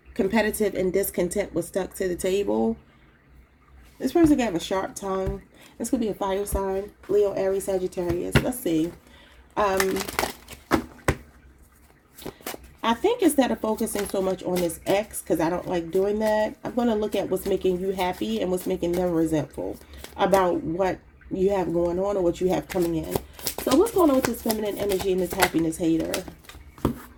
competitive, and discontent was stuck to the table. This person could have a sharp tongue. This could be a fire sign. Leo, Aries, Sagittarius. Let's see. I think instead of focusing so much on this ex, because I don't like doing that, I'm going to look at what's making you happy and what's making them resentful about what you have going on or what you have coming in. So what's going on with this feminine energy and this happiness hater?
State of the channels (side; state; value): both; identical; correlation 1.00